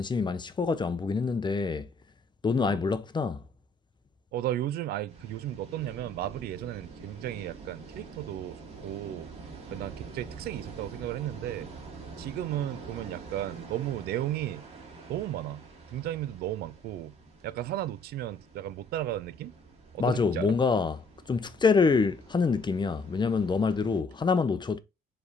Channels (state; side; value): normal; both; correlation 0.59